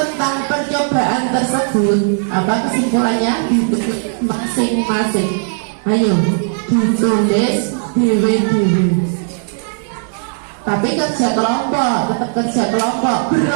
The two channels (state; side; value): silent; left; digital silence